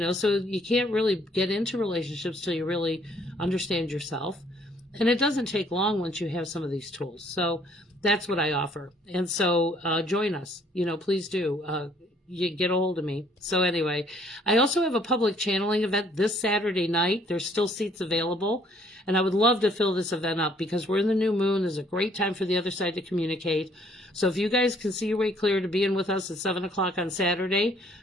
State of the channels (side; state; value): both; normal; correlation 0.63